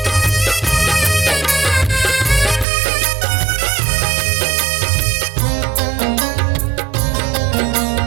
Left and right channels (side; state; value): left; drops out; at 2.7 s